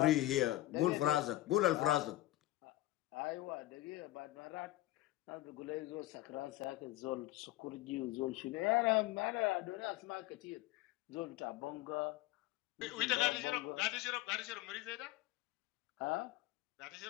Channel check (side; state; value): right; quieter; 16.8 dB